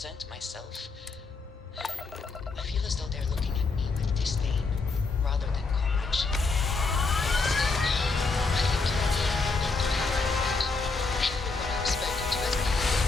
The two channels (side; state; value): right; quieter; 4.0 dB